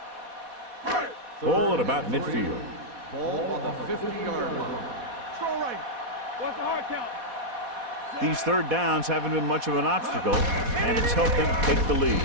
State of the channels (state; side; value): late; left; 4.1 ms